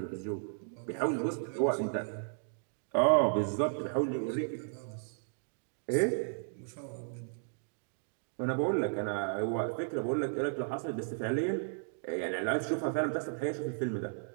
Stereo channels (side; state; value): left; silent; digital silence